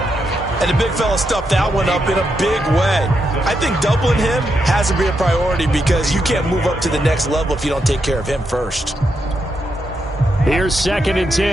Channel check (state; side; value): normal; both; correlation 0.82